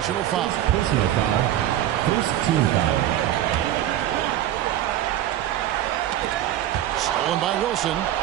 foul. Personal foul. First team foul. Stolen by Wilson.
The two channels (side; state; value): left; quieter; 12.5 dB